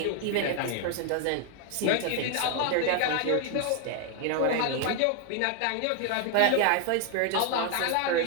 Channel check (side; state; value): both; different; correlation 0.00